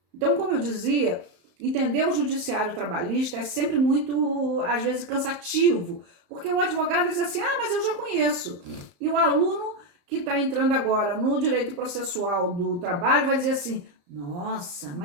Então, como eu dizia, entender o Judiciário Trabalhista é sempre muito, às vezes, cansativo, porque o advogado diz assim, mas eu já conheço. E o aluno que está entrando agora no direito processual do trabalho vai dizer assim, nossa,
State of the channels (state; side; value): late; left; 34 ms